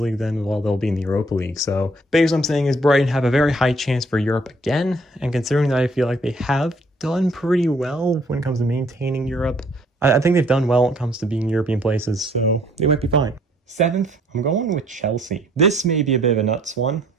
then, well, they'll be in the Europa League. So basically what I'm saying is Brighton have a very high chance for Europe again, and considering that I feel like they have done pretty well when it comes to maintaining Europe, I think they've done well when it comes to being European places, so they might be fine. 7th, I'm going with Chelsea. This may be a bit of a nuts one,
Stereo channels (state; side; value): normal; both; correlation 0.62